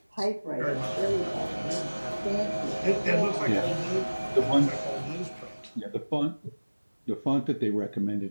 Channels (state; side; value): inverted; both; correlation -1.00